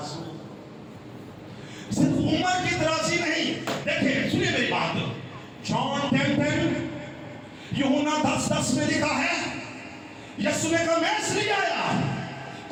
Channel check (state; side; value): identical; both; correlation 1.00